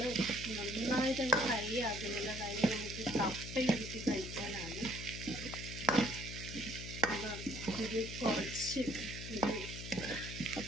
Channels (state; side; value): noise; left; hum, 8 dB below the sound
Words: നന്നായിട്ട് ഫ്രൈ ആക്കുന്നില്ല. കാര്യം നമുക്ക് കപ്പയിട്ട് കഴിക്കാനാണ്. ഇത് കുറച്ച്